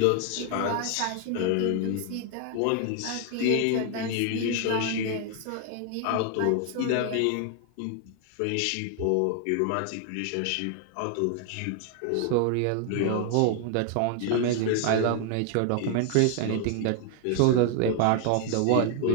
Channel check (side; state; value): both; different; correlation 0.00